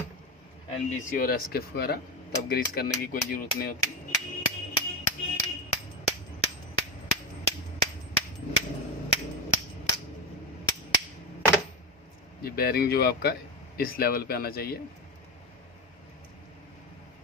NBC और SKF वगैरह, तब ग्रीस करने की कोई ज़रूरत नहीं होती। ये बैरिंग जो आपका इस लेवल पे आना चाहिए।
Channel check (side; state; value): both; normal; correlation 0.17